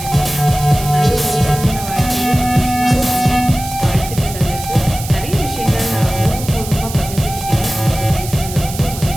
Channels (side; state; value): right; noise; hiss, 11 dB below the sound